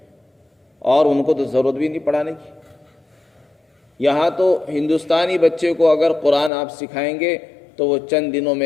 اور ان کو تو ضرورت بھی نہیں پڑھانے کی۔ یہاں تو ہندوستانی بچے کو اگر قرآن آپ سکھائیں گے تو وہ چند دنوں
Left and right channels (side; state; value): right; drops out; at 6.5 s